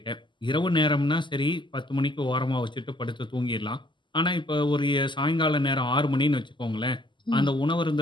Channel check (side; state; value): right; late; 0.23 ms